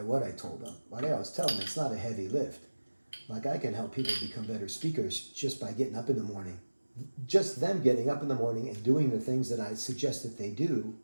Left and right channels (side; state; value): both; inverted; correlation -1.00